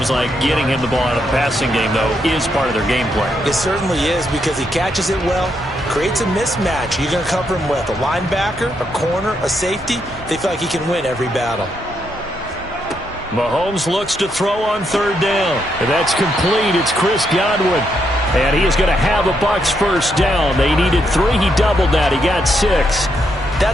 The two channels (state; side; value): normal; both; correlation 0.78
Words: like getting him the ball out of the passing game, though, is part of their game plan. It certainly is because he catches it well, creates a mismatch. You're going to cover him with a linebacker, a corner, a safety. They feel like he can win every battle. Mahomes looks to throw on third down. And that's complete. It's Chris Godwin. And he is going to have a Bucs first down. They needed 3. He doubled that. He got 6.